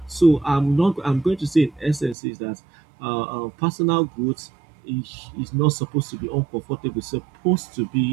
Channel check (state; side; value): drops out; left; at 2.1 s